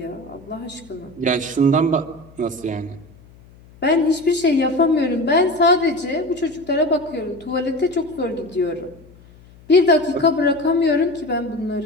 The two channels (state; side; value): noise; left; hum, 25 dB below the sound